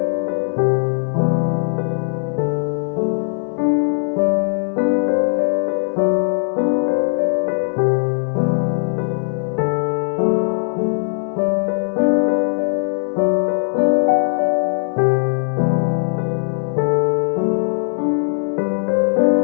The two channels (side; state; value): right; silent; digital silence